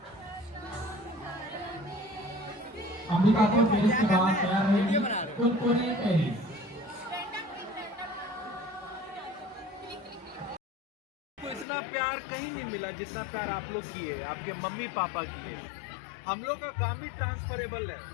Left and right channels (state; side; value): drops out; right; at 11.7 s